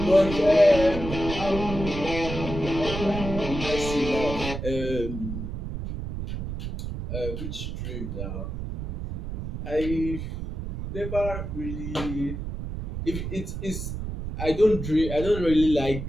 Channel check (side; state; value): right; noise; rumble, 6 dB below the sound